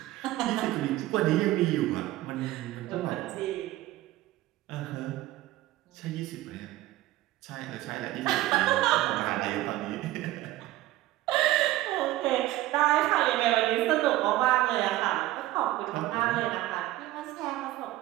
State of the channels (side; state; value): left; quieter; 16.1 dB